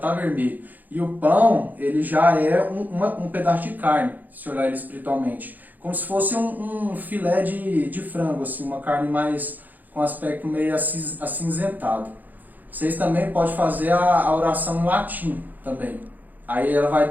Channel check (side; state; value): left; late; 0.084 ms